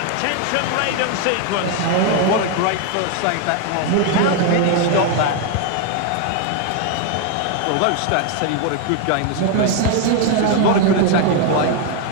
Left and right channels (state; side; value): different; both; correlation 0.01